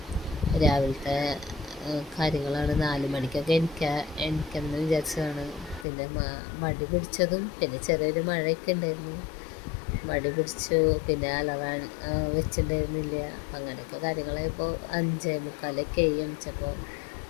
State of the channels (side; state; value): right; drops out; at 5.9 s